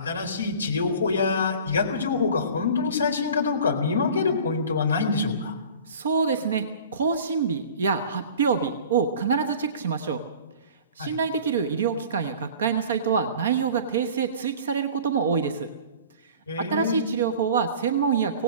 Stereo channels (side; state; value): both; inverted; correlation -0.43